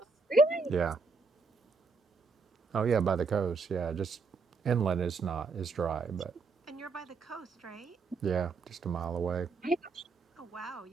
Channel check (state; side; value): quieter; left; 4.4 dB